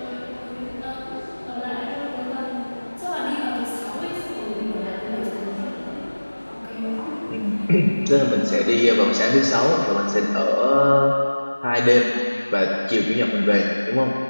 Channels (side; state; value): both; inverted; correlation -1.00